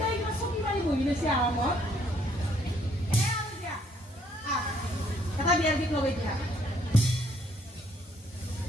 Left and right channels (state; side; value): normal; both; correlation 0.66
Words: কিবা চকী মাৰি বহি লৈছে আৰামত এ আৰু দিয়া এটা বিয়াৰ গীত লগাই দিয়া